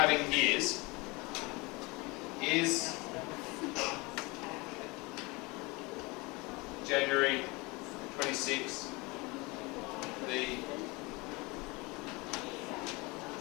is January 26th the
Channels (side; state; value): right; quieter; 25.3 dB